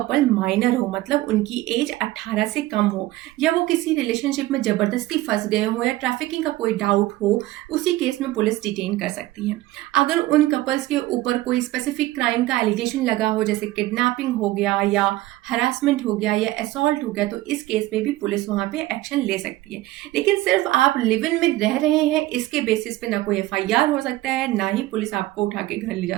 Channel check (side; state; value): left; quieter; 17.1 dB